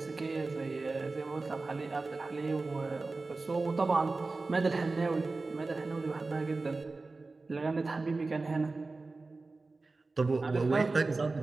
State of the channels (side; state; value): left; quieter; 3.6 dB